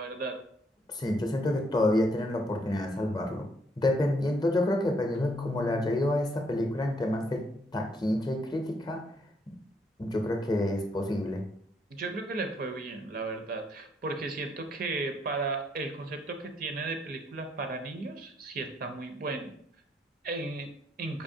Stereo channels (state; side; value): normal; both; correlation 0.72